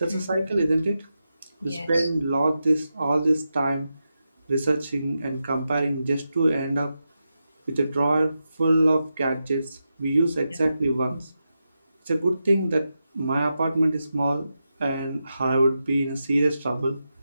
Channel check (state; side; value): inverted; both; correlation -0.89